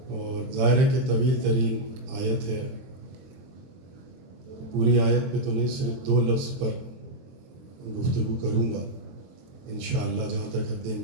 اور ظاہر ہے کہ طویل ترین آیت ہے۔ پوری آیت پہ تو نہیں، صرف 2 لفظ پر گفتگو کروں گا انشاءاللہ جہاں تک حد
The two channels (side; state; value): left; late; 23 ms